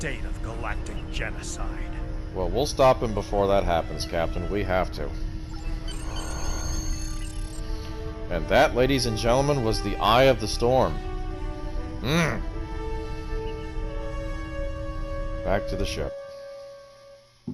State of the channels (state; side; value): identical; both; correlation 1.00